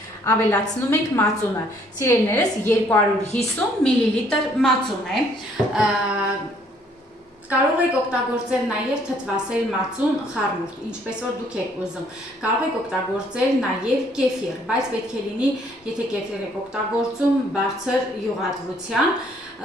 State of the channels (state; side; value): normal; both; correlation 0.64